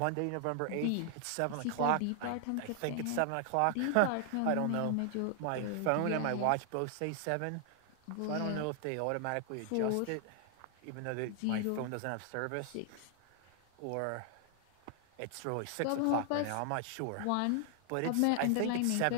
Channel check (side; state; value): both; different; correlation 0.00